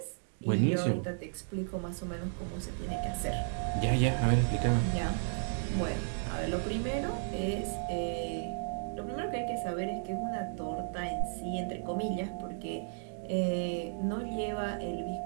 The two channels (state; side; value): silent; left; digital silence